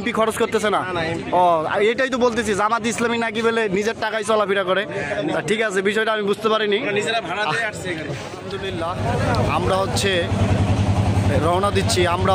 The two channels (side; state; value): both; identical; correlation 1.00